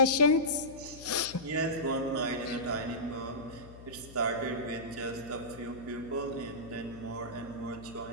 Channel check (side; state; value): left; noise; hum, 18 dB below the sound